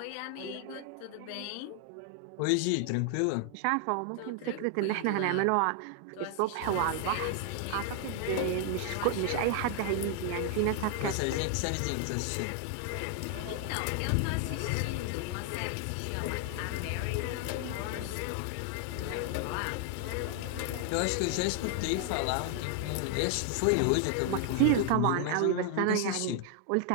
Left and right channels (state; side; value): different; both; correlation 0.00